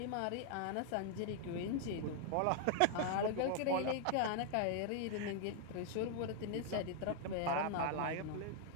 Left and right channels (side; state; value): both; different; correlation 0.00